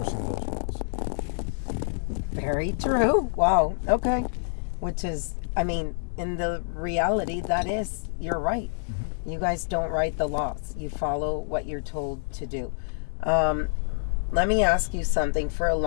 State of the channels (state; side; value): silent; right; digital silence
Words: those laws. Very true. Wow. Okay. Which is, I mean, in the reality, that is, you're right. Mm-hmm. You guys don't write the laws. You follow what you're told to do. Let me ask you something. For a